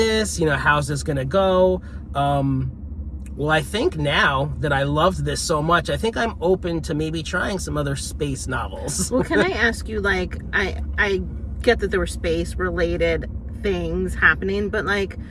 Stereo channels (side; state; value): both; identical; correlation 1.00